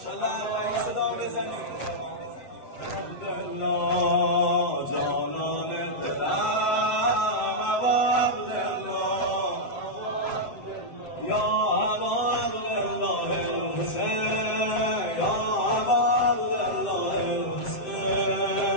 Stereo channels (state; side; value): late; right; 7.6 ms